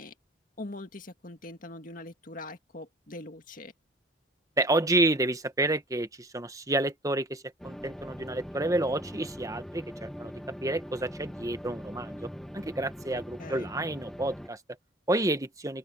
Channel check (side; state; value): both; normal; correlation 0.47